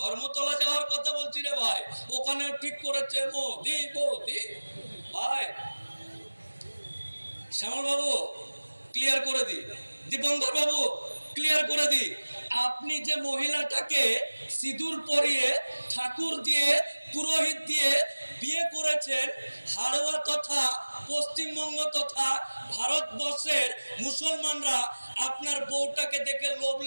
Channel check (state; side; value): inverted; both; correlation -1.00